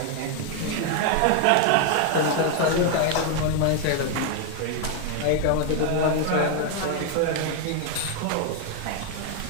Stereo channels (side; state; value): both; different; correlation 0.01